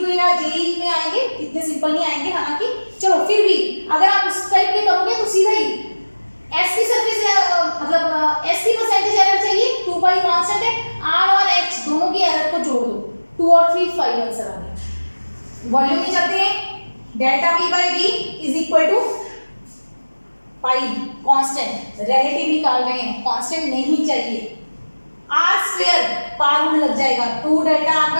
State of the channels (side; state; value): both; inverted; correlation -1.00